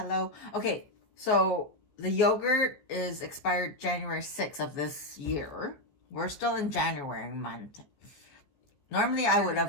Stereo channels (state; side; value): late; right; 14 ms